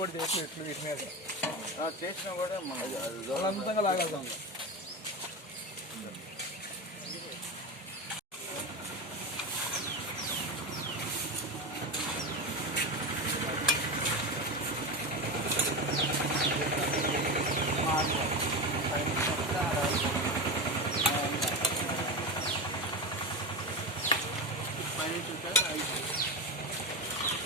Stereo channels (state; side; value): normal; both; correlation 0.19